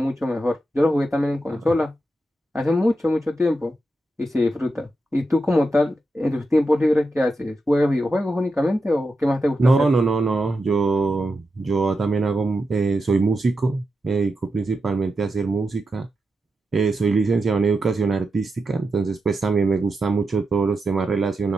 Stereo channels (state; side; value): normal; both; correlation 0.88